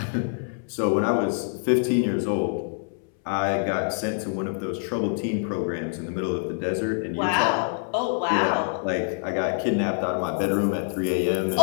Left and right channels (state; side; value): silent; right; 61 dB below the other